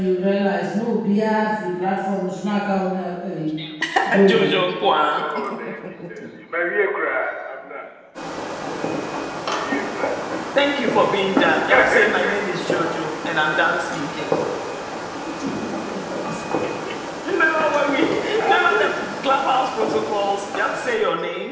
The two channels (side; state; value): both; identical; correlation 1.00